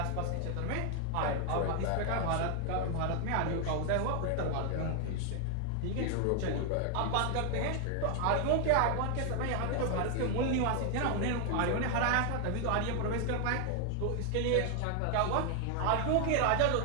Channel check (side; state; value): both; different; correlation 0.00